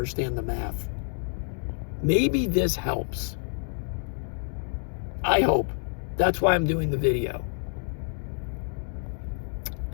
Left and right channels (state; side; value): silent; right; 59 dB below the other